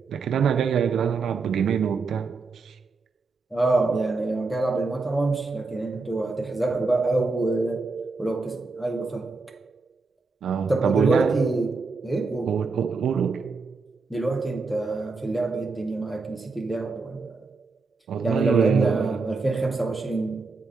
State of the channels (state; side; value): quieter; left; 4.1 dB